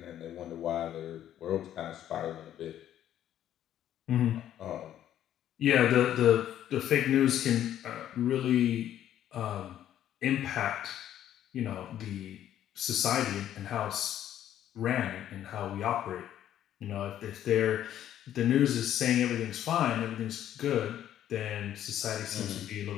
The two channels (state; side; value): quieter; right; 11.3 dB